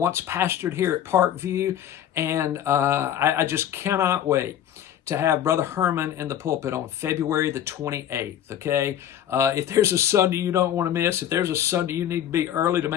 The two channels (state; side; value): quieter; right; 10.6 dB